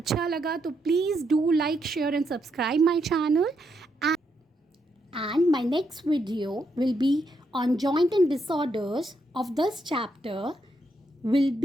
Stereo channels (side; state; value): both; normal; correlation 0.79